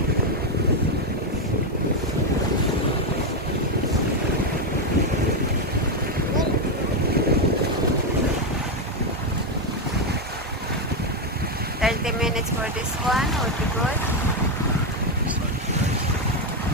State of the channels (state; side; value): normal; both; correlation 0.06